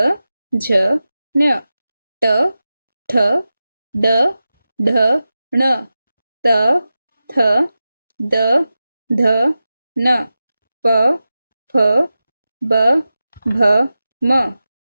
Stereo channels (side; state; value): both; inverted; correlation -0.93